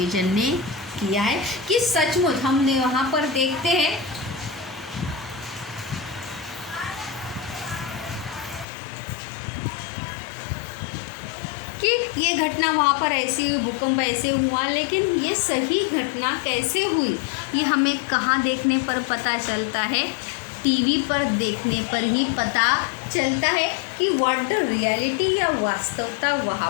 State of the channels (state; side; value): drops out; right; at 8.7 s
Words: ने किया है कि सचमुच हमने वहाँ पर देखते हैं कि ये घटना वहाँ पर ऐसी हुई, भूकंप ऐसे हुआ, लेकिन ये सही घटना कैसे हुई ये हमें कहाँ देखने पर पता चलता है? टीवी पर देखने पर ही पता चलता है कि व्हाट द रियलिटी या वास्तवता वहाँ